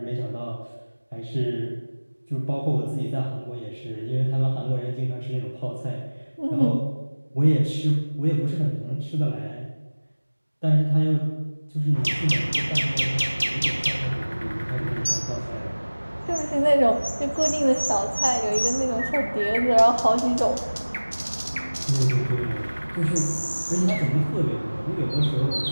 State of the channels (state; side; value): inverted; both; correlation -1.00